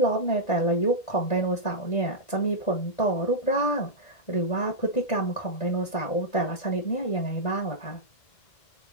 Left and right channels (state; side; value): late; right; 1.5 ms